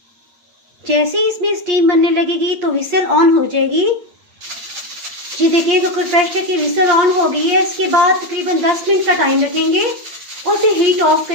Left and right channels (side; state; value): left; late; 8.6 ms